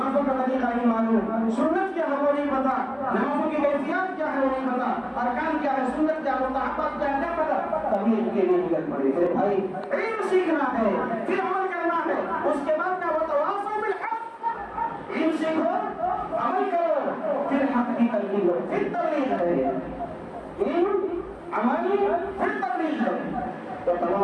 کا طریقہ نہیں معلوم, سنت کیا ہے وہ نہیں پتا, نمازوں کی کیفیات کیا ہے وہ نہیں پتا, ارکان کیا ہے, سنت کیا ہے, مستحبات کیا ہے, نہیں پتا, تبھی ان کے لیے مدد پڑے. میرے بھائی علم سیکھنا ہے, پھر عمل کرنا ہے, اس کے بعد کا وتواصوا بالحق, علم سیکھو, عمل کرو, پھر حق کی تلقین کرو, پھر تبلیغ ہے. علم, عمل, پھر تبلیغ ہے.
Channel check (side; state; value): both; identical; correlation 1.00